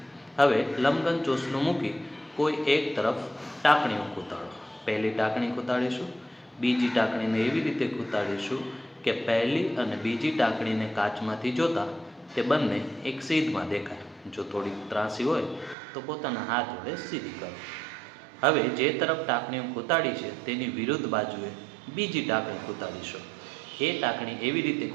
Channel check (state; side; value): drops out; left; at 15.8 s